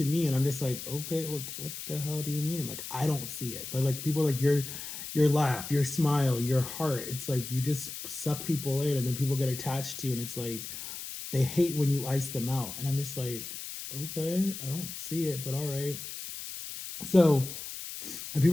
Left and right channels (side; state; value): left; noise; hiss, 9 dB below the sound